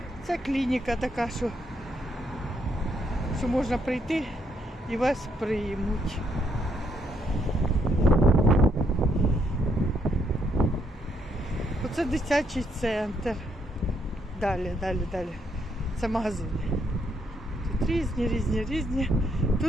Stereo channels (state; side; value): normal; both; correlation 0.74